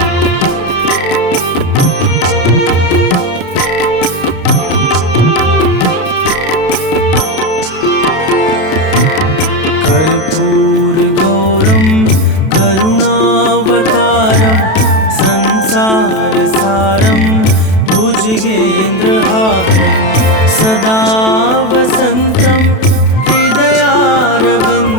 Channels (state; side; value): late; right; 32 ms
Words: कर्पूरगौरं करुणावतारं संसारसारं भुजगेन्द्रहारं सदा वसन्तं